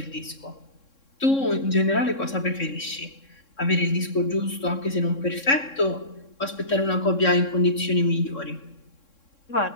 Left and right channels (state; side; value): late; right; 3.6 ms